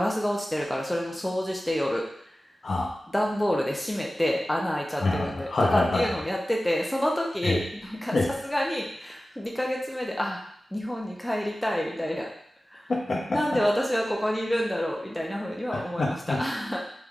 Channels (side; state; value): both; normal; correlation 0.96